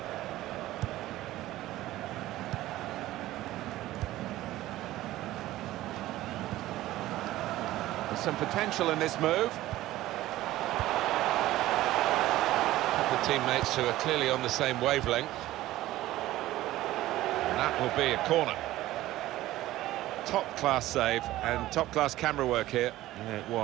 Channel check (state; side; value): quieter; left; 15.7 dB